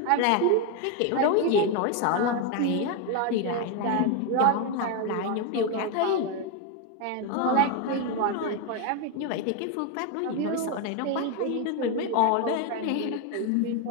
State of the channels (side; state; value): both; different; correlation 0.02